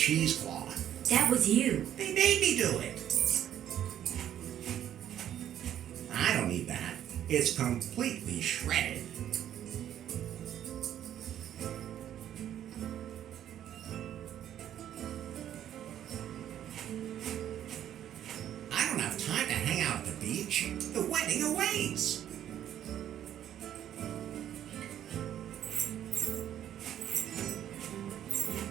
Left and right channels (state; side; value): quieter; left; 10.8 dB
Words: That was you. They made me do it. I don't need that. It's completely shredded. I don't have time to hang out at the beach. The wedding awaits.